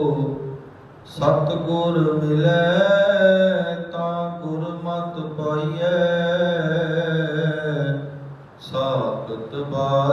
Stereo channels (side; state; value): both; identical; correlation 1.00